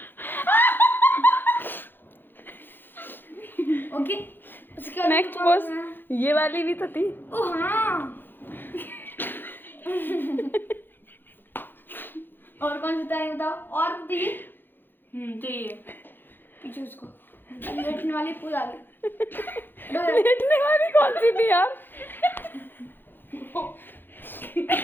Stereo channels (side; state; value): right; late; 0.097 ms